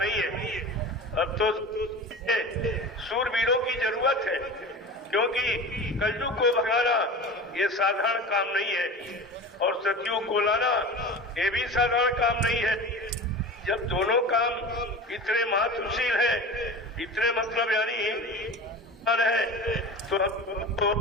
है। अब तो सूरवीरों की जरूरत है, क्योंकि कलयुग को भगाना ये साधारण काम नहीं है और सतयुग को लाना ये भी साधारण काम नहीं है। जब दोनों काम इतने महत्वशील है, इतने मतलब यानी है, तो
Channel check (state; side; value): normal; both; correlation 0.33